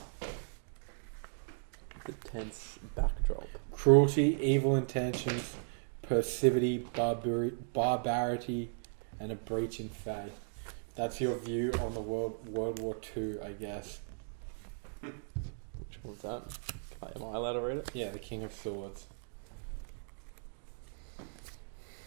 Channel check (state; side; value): silent; left; digital silence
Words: The tense backdrop. Cruelty, evil intentions, passivity, barbarity, and a breach in faith. That's your view on the World War II, I guess. Which one was that? Am I allowed to read it? Yeah, the King of Swords.